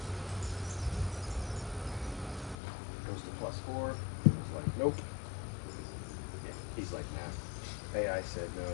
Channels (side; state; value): right; drops out; at 2.6 s